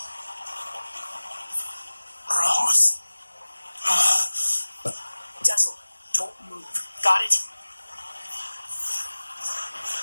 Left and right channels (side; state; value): both; inverted; correlation -1.00